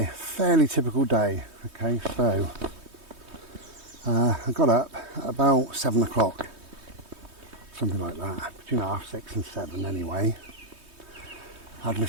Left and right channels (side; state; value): left; late; 3.2 ms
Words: fairly typical day. Okay, so I got up at about 7 o'clock, something like that, between 6:30 and 7 anyway. Had